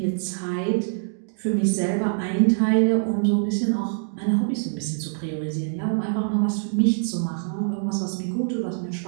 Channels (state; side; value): silent; left; digital silence